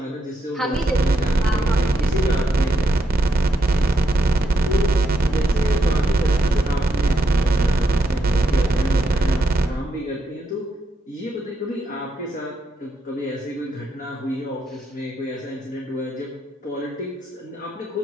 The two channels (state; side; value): normal; both; correlation 0.80